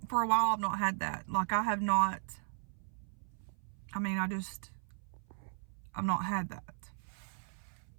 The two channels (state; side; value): silent; left; 53 dB below the other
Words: for a while I've not had that. Like, I have not. I mean, I've not had that.